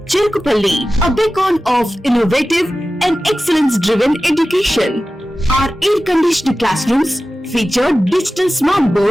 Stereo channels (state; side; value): normal; both; correlation 0.95